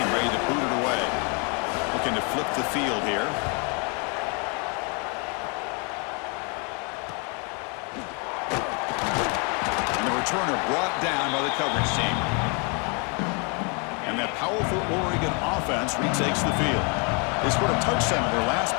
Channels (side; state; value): right; quieter; 34.8 dB